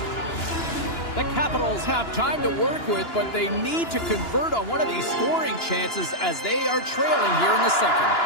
The Capitals have time to work with, but they need to convert on one of these scoring chances as they are trailing here in the second.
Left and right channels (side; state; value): right; late; 2.9 ms